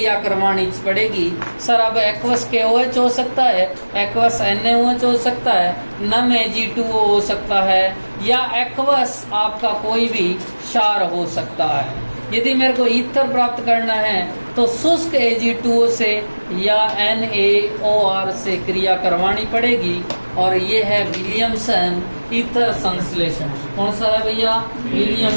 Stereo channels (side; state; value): both; inverted; correlation -1.00